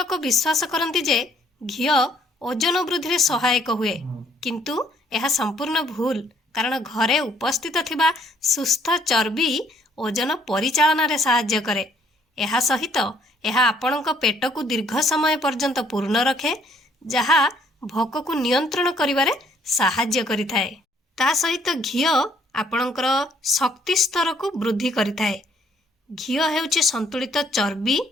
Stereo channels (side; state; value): both; normal; correlation 0.64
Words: विश्वास करती जे घिओ ओजन वृद्धि रे सहायक हुए, किंतु यह संपूर्ण भूल। कारण घरे उपस्थित थिबा सुस्थ चर्बी ओजन परिचालन रे सहाय्य करे। यह सहित यह आपणक पेट को दीर्घ समय पर्यंत पूर्ण रखे, जहा भोक को नियंत्रण करिवारे सहाय्य करिथाए। ता सहित घिओ आपणकर शक्ति स्तर को वृद्धि करिथाए। घिओ हेउची संतुलित चर्बी